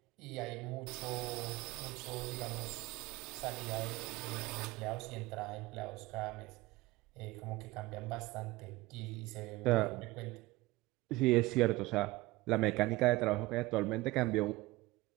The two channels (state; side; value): quieter; left; 20.1 dB